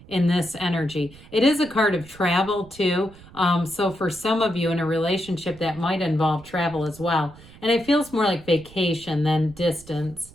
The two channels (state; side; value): noise; right; rumble, 21 dB below the sound